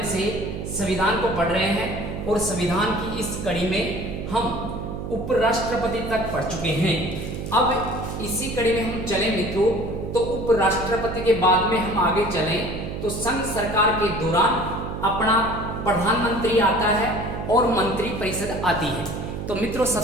से संविधान को पढ़ रहे हैं और संविधान की इस कड़ी में हम उपराष्ट्रपति तक पढ़ चुके हैं। अब इसी कड़ी में हम चले मित्रों, तो उपराष्ट्रपति के बाद में हम आगे चलें तो संघ सरकार के दौरान अपना प्रधानमंत्री आता है और मंत्री परिषद आती है। तो मित्रों,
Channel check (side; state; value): right; noise; hum, 6 dB below the sound